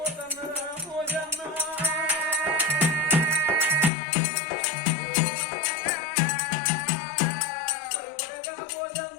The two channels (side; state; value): right; drops out; at 3.9 s